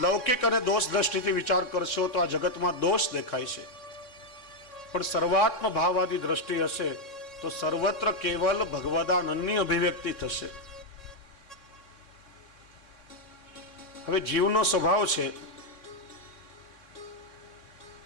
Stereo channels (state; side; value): late; right; 3.7 ms